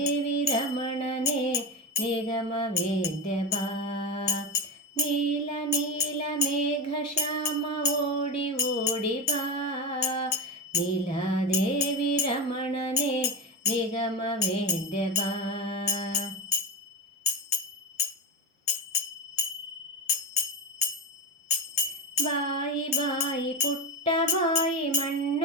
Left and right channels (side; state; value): both; normal; correlation 0.20